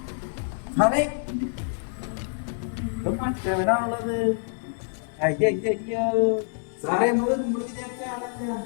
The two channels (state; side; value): silent; right; digital silence